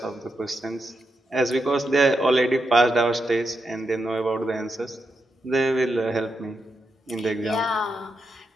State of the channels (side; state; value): both; normal; correlation 0.85